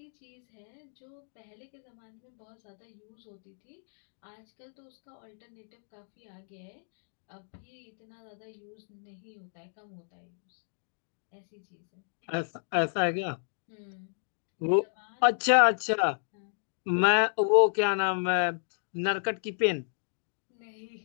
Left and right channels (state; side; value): silent; right; digital silence